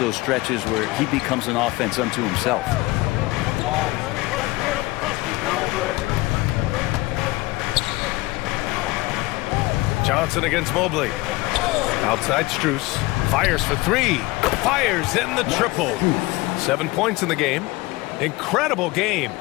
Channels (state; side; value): quieter; right; 21.2 dB